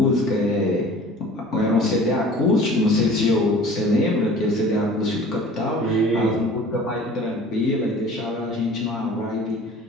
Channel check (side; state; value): both; normal; correlation 0.45